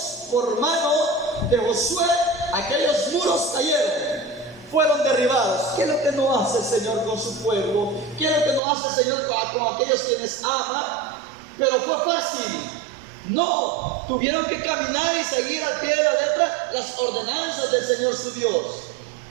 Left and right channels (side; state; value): left; drops out; at 8.6 s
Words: por mano de Josué, aquellos muros cayeron, fueron derribados. ¿Qué es lo que no hace el Señor con su pueblo? ¿Qué es lo que no hace el Señor con aquellos quienes ama? Pero fue fácil. No, tuvieron que caminar y seguir al pie de la letra las ordenanzas del Señor su Dios.